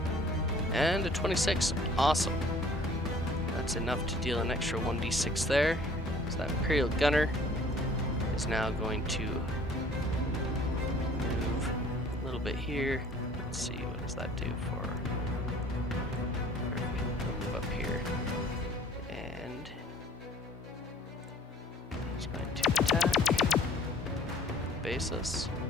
And a 26. Awesome. That's enough to deal an extra 1d6 there. So that Imperial Gunner is now going to move a little bit here. Let's see, what does that do for... Move up here. Basis.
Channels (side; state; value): both; normal; correlation 0.54